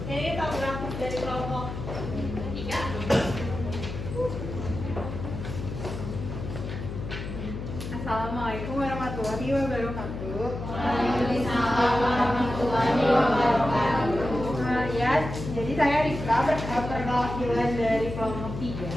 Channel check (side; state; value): left; noise; hum, 7 dB below the sound